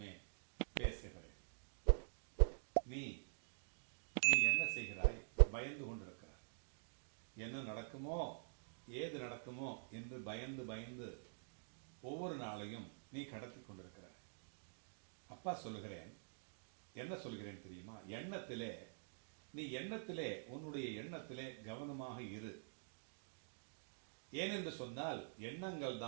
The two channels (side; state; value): left; silent; digital silence